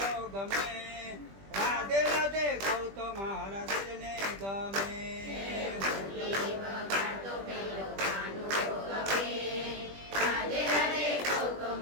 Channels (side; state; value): left; late; 20 ms